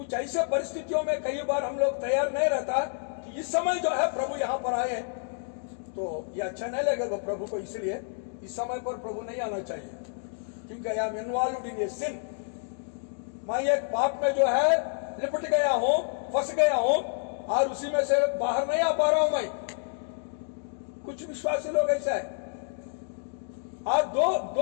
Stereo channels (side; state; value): right; silent; digital silence